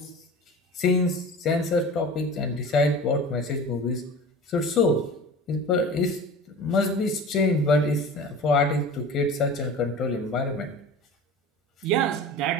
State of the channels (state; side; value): normal; both; correlation 0.36